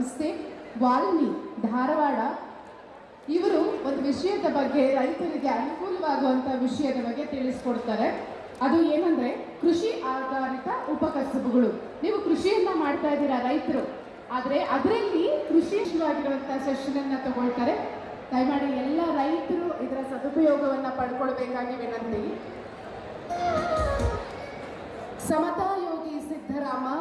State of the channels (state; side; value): identical; both; correlation 1.00